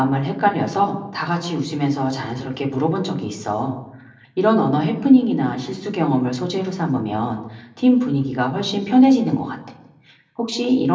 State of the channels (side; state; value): both; identical; correlation 1.00